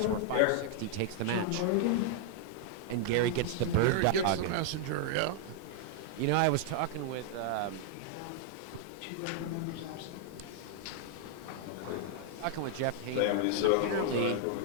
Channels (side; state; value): both; different; correlation -0.01